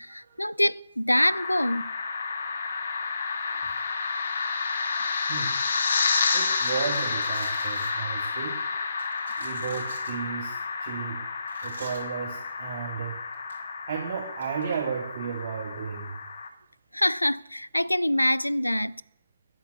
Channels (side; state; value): both; inverted; correlation -0.85